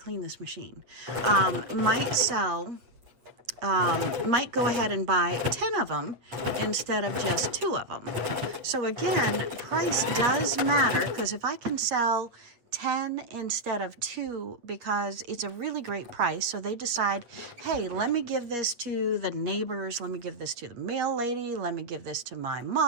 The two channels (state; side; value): late; left; 8.1 ms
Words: this machine. Might go ahead and buy 10 of them instead of just 2 of them. So again, price does matter, because if I can sell 10 instead of 2 because it's a really great price, so they decide, hey, let me give this to the neighbors, let me give this to the mail lady, let me give this to my